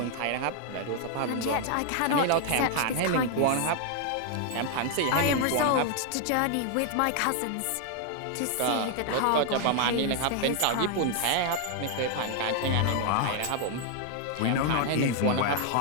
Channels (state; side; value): different; both; correlation 0.00